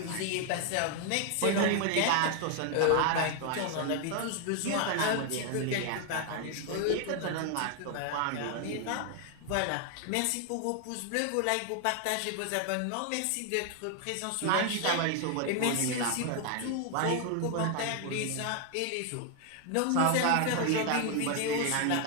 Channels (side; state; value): both; different; correlation 0.00